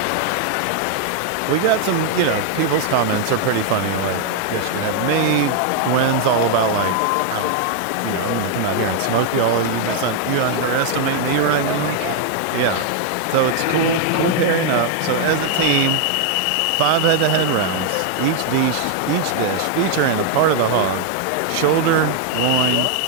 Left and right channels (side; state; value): both; different; correlation 0.00